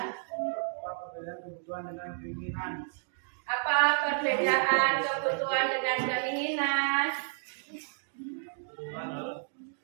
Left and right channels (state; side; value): silent; left; 57 dB below the other